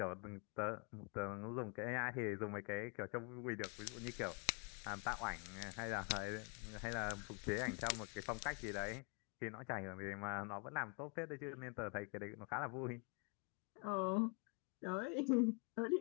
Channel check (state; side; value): quieter; right; 34.0 dB